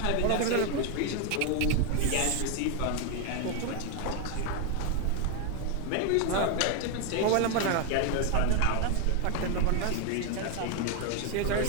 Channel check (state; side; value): different; both; correlation 0.01